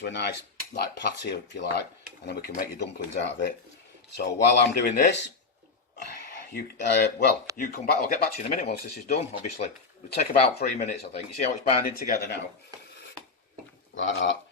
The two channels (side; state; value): right; quieter; 4.3 dB